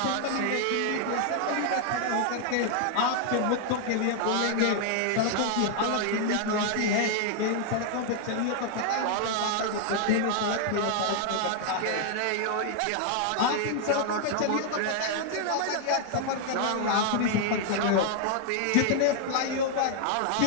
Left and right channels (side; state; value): both; different; correlation 0.00